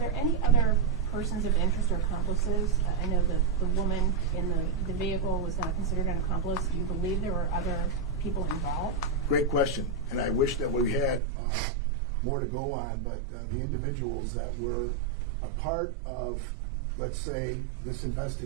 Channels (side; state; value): left; drops out; at 11.2 s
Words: any other persons of interest or accomplices? I know that the woman in the vehicle was not considered an accomplice. Do you believe there were other people involved? Great question, and I wish that we had more to go on, but the individuals that were a part of, let's say, this